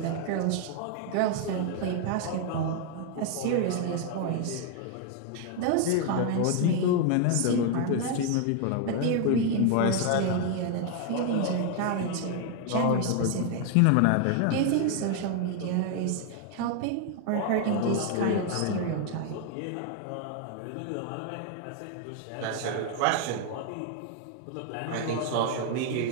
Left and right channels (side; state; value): both; different; correlation 0.00